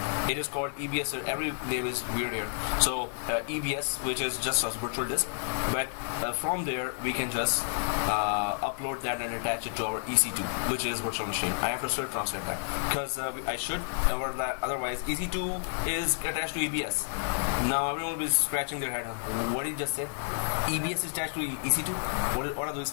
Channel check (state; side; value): silent; right; 58 dB below the other